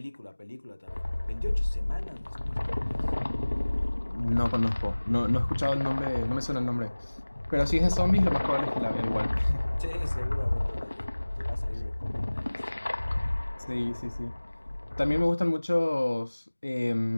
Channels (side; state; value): both; inverted; correlation -1.00